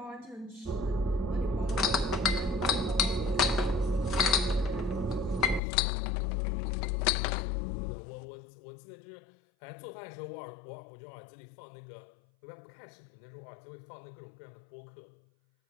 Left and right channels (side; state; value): right; drops out; at 5.6 s